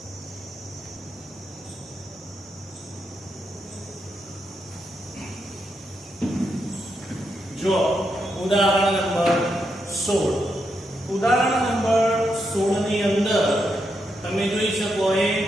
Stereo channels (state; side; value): normal; both; correlation 0.82